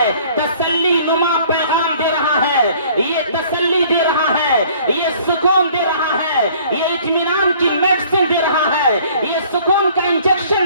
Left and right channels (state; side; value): inverted; both; correlation -0.54